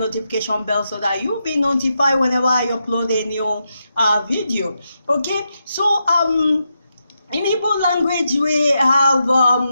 bell so that you'll be notified whenever I upload a new video. Okay, so in Igbo language we have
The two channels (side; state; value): both; inverted; correlation -0.85